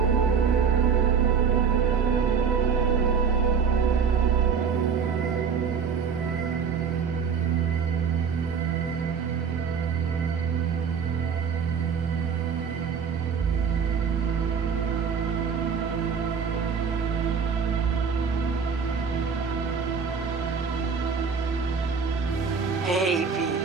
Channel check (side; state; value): left; quieter; 6.2 dB